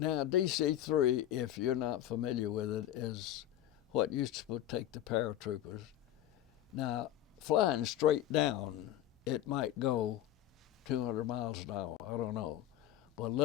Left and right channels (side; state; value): right; quieter; 12.2 dB